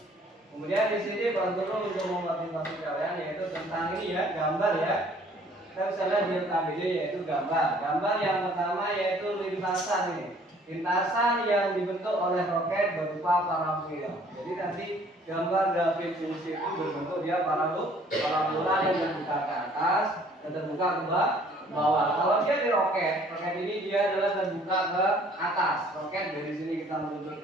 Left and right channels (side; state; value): both; normal; correlation 0.57